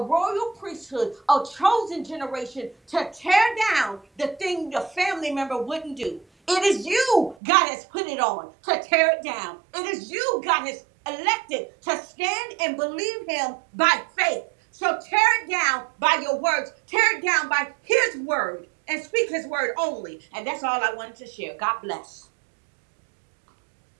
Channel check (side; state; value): left; drops out; at 7.4 s